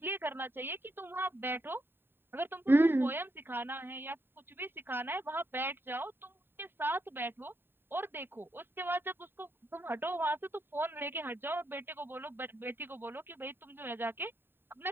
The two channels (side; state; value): left; late; 0.10 ms